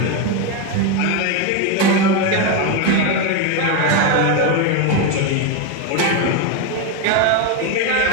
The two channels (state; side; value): different; both; correlation 0.03